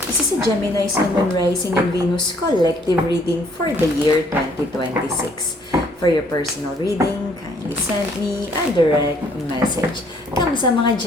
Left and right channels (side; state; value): both; normal; correlation 0.63